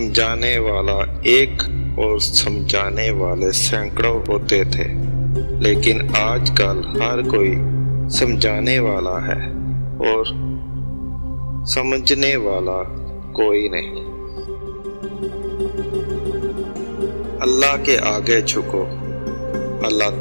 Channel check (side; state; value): both; inverted; correlation -1.00